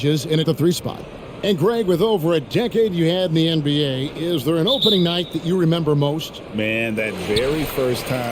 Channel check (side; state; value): both; identical; correlation 1.00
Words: in at the 3 spot. And Greg, with over a decade you had in the NBA, is there an opening night that you remember most? Man, that very first